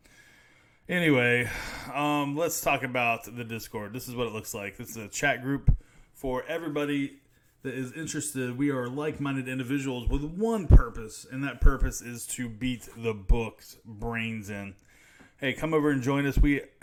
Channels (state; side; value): identical; both; correlation 1.00